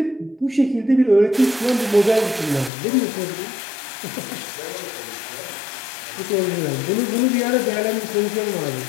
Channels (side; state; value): right; drops out; at 2.7 s